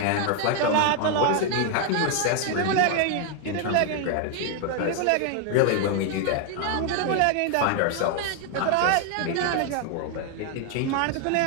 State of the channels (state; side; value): different; both; correlation 0.00